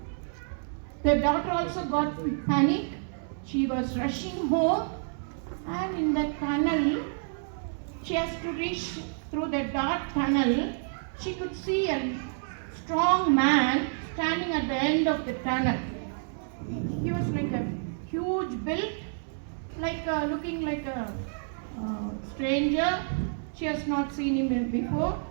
The daughter also got panic. She was rushing home, and in that tunnel, she has to reach through the dark tunnel. She could see a strong man standing at the end of the tunnel. He was like a huge build, looking like a stranger. She has not seen him before.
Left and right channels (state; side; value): silent; left; 59 dB below the other